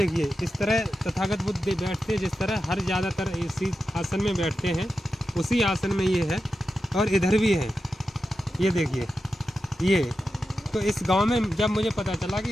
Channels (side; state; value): both; normal; correlation 0.90